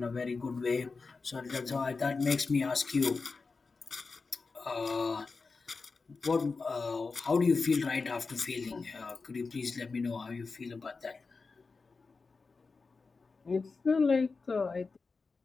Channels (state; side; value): quieter; right; 4.3 dB